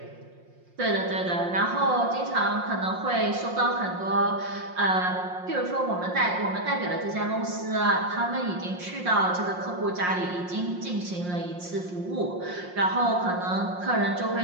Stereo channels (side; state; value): left; late; 5.6 ms